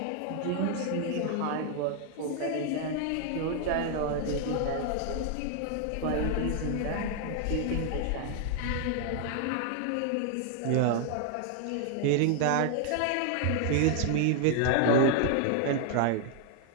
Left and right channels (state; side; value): different; both; correlation 0.00